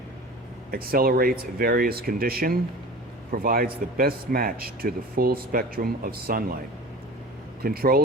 accelerates various conditions, provides the best match to the full spectrum of sunlight,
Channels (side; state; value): both; normal; correlation 0.38